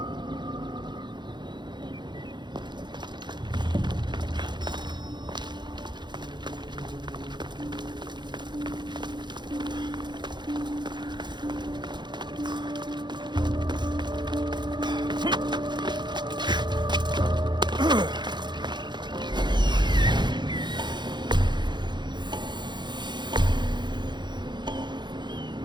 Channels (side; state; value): left; late; 0.21 ms